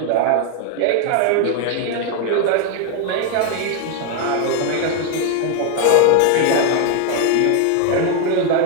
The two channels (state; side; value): different; both; correlation 0.00